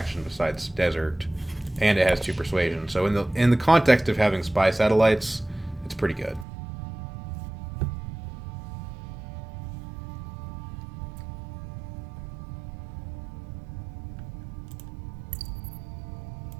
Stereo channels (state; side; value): drops out; left; at 6.5 s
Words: besides desert, and it has 2 persuasion. So in the context of having spy satellites, it's pretty good.